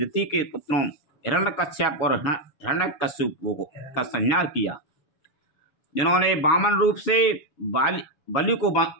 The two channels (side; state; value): right; late; 7.1 ms